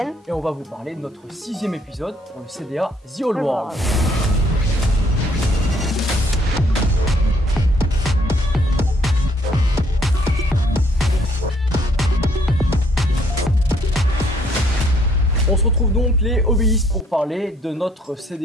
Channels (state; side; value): normal; both; correlation 0.65